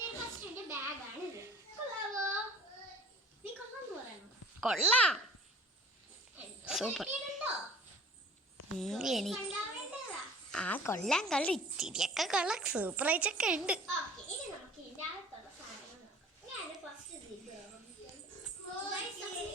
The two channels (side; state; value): both; normal; correlation 0.48